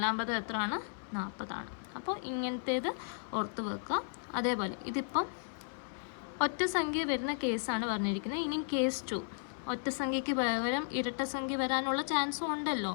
പദം എത്രയാണ്? 40 ആണ്. അപ്പോൾ ഇങ്ങനത്തേത് ഓർത്ത് വെക്കുക. അതേപോലെ ഇതിപ്പം ഒറ്റ സംഖ്യ വരുന്ന കേസാണ് പറഞ്ഞിരിക്കുന്നത്. ഇനി കേസ് 2, ഒറ്റ സംഖ്യയ്ക്ക് പകരം ഇരട്ട സംഖ്യ വരാനുള്ള ചാൻസും ഉണ്ടല്ലോ.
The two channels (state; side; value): silent; right; 55 dB below the other